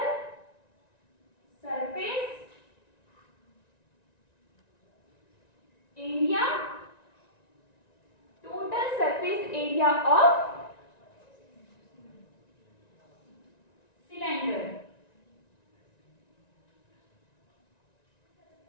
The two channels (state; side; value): late; right; 1.9 ms